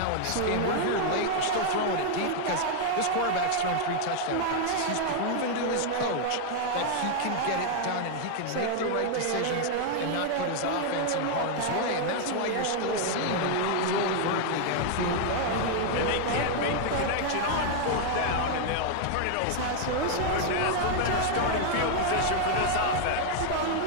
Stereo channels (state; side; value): different; both; correlation 0.00